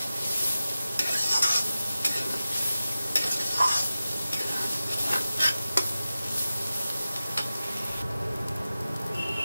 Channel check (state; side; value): inverted; both; correlation -0.94